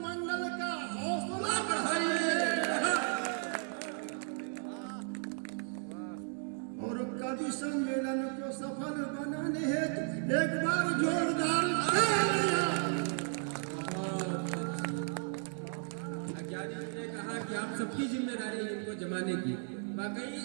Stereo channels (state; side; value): silent; left; 55 dB below the other